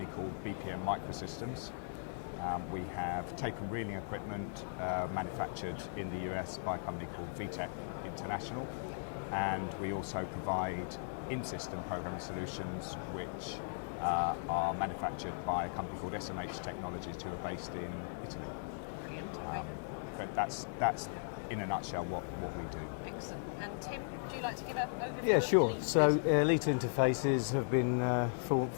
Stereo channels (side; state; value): right; silent; 53 dB below the other